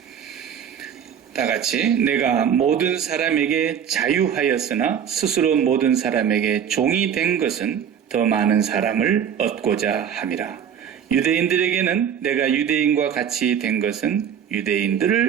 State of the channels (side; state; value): left; quieter; 8.4 dB